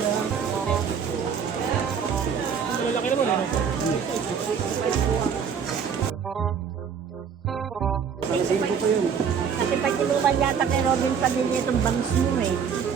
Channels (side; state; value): left; quieter; 6.9 dB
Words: Malaki naman eh. Kasi pag inuman yata kay Robin Padilla itong bangs mo eh.